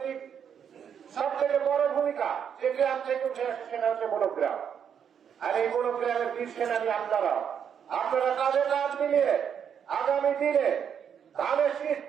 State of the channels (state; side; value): quieter; left; 8.0 dB